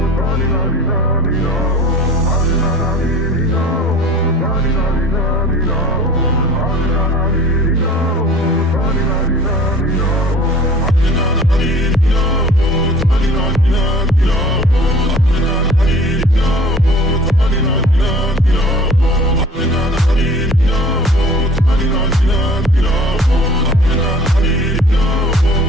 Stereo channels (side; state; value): both; normal; correlation 0.46